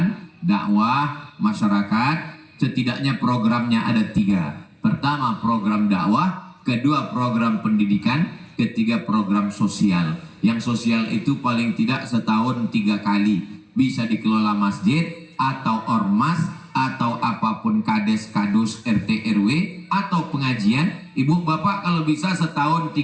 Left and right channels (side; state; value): both; identical; correlation 1.00